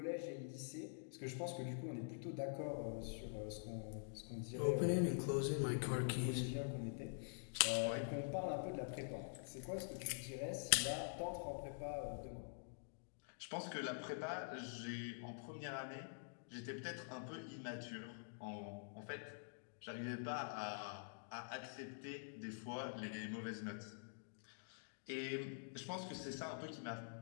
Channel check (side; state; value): right; silent; digital silence